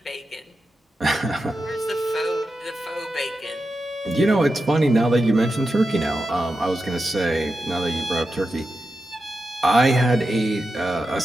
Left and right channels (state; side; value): normal; both; correlation 0.90